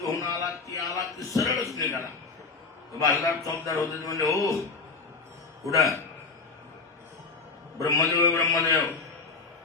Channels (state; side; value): quieter; right; 4.3 dB